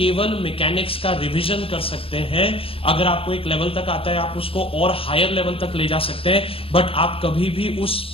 मैकेनिक्स का रिवीजन कर सकते हैं। अगर आपको एक लेवल तक आता है आप उसको और हायर लेवल तक ले जा सकते हैं, बट आप कभी भी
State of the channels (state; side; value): late; right; 0.27 ms